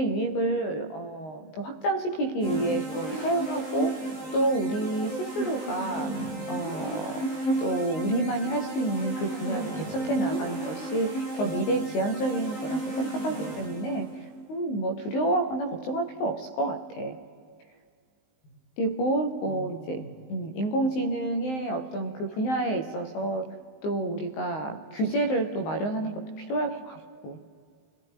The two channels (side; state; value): right; late; 19 ms